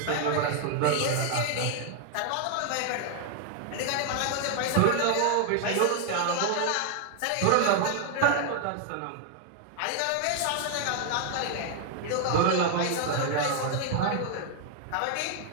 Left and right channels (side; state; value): both; different; correlation 0.00